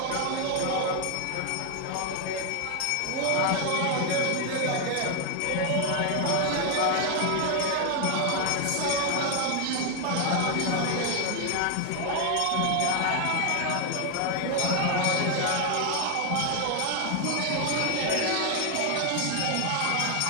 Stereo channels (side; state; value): both; different; correlation 0.01